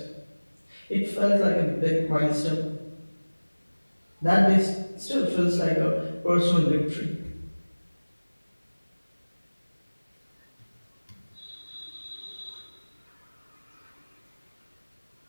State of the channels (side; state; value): both; inverted; correlation -1.00